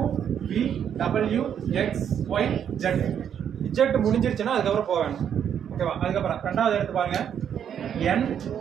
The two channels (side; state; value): left; quieter; 8.7 dB